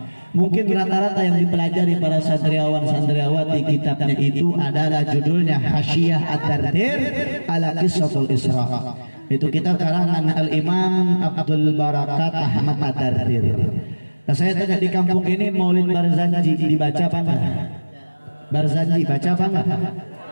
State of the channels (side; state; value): both; inverted; correlation -1.00